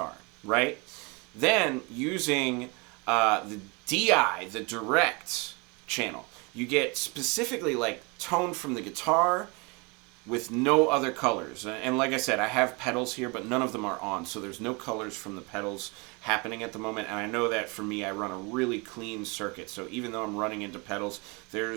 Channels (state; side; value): quieter; left; 29.4 dB